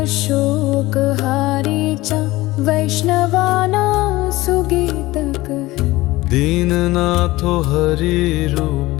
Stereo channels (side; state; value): right; quieter; 18.9 dB